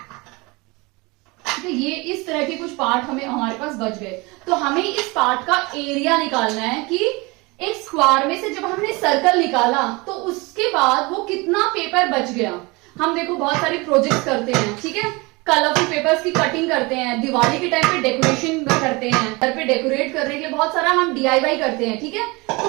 ठीक है। ये इस तरह के कुछ पार्ट हमारे पास बच गए। तो हमें इस पार्ट का एरिया निकालना है कि एक स्क्वायर में से जब हमने सर्कल निकाला तो उसके बाद वो कितना पेपर बच गया। हम देखो बहुत सारी प्रोजेक्ट करते हैं, ठीक है, कलरफुल पेपर्स की कटिंग करते हैं, दिवाली के टाइम पे डेकोरेशन करते हैं, घर पे डेकोरेट करने के लिए बहुत सारा हम DIY करते हैं, ठीक है। तो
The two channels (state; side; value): quieter; left; 25.3 dB